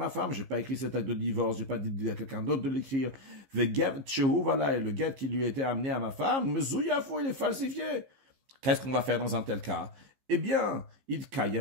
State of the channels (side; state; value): left; late; 15 ms